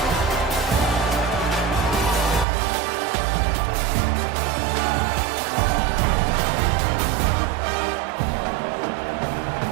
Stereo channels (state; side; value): drops out; left; at 2.5 s